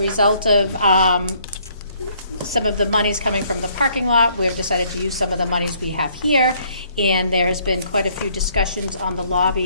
of some of the monies coming from the parking lot. We've decided to use some of the monies we have here. and there has been quite a few discussions on the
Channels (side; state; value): both; inverted; correlation -0.64